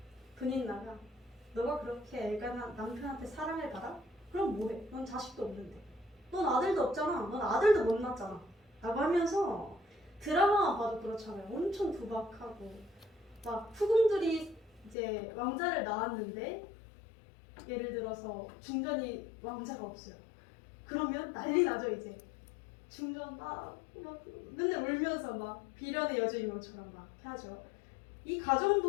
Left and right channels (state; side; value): drops out; right; at 15.0 s